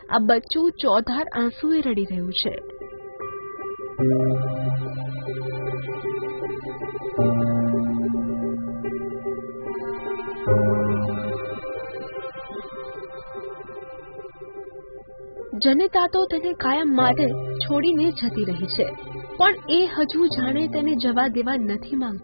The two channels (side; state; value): both; inverted; correlation -1.00